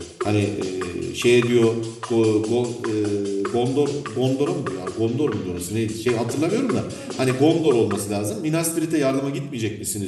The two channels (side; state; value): both; identical; correlation 1.00